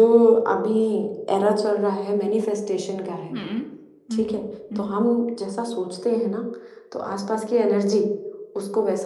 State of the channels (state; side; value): identical; both; correlation 1.00